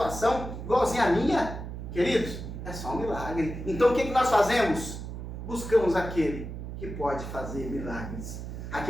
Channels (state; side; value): noise; right; hum, 8 dB below the sound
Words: igualzinho a minha. Queridos, é só um milagre. Então o que nós fazemos? Buscamos aquele que pode fazer milagres.